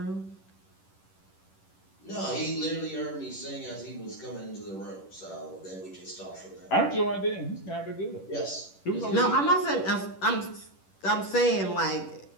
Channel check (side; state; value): right; late; 10 ms